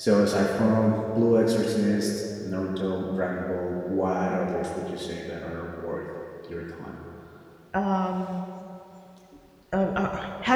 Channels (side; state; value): both; identical; correlation 1.00